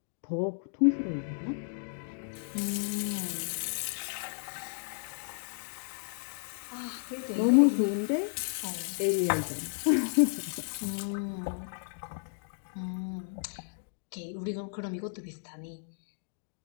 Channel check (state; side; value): silent; right; digital silence